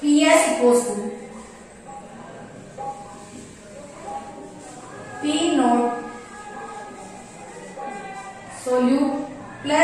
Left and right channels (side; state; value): both; identical; correlation 1.00